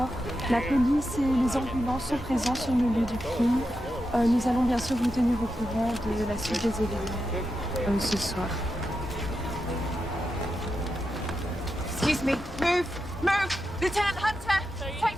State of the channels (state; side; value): normal; both; correlation 0.88